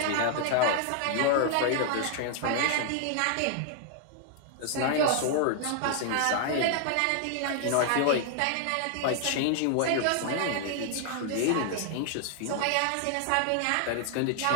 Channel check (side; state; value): both; different; correlation 0.00